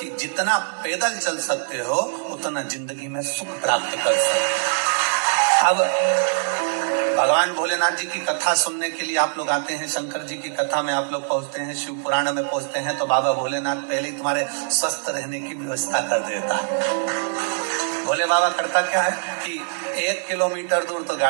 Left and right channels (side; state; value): left; silent; digital silence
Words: जितना पैदल चल सकते हो उतना जिंदगी में सुख प्राप्त कर सकते हो। अब भगवान भोलेनाथ जी की कथा सुनने के लिए आप लोग आते हैं, शंकर जी की कथा में आप लोग पहुंचते हैं, शिव पुराण में पहुंचते हैं, तो बाबा भोलेनाथ पहले ही तुम्हारे स्वस्थ रहने की व्यवस्था कर देता है। भोले बाबा करता क्या है कि 1 किलोमीटर दूर तो